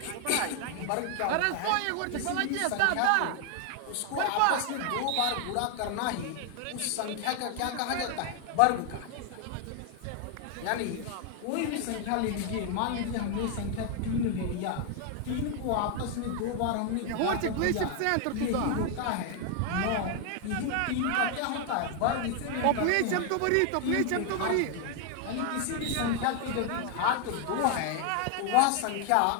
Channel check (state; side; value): different; both; correlation 0.00